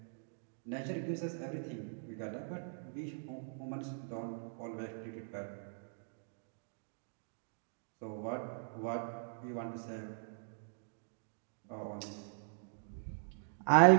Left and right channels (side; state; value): left; silent; digital silence